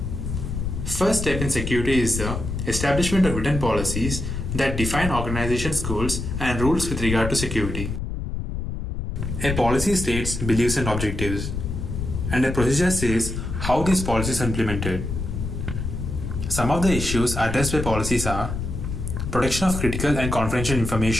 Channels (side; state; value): left; noise; rumble, 4 dB below the sound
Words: First step in security is the establishment of written policies that define organization's goals and rules with regard to security. A policy states beliefs and objectives, and a procedure says how these policies are implemented. Some of the issues addressed by policies are protection of critical and confidential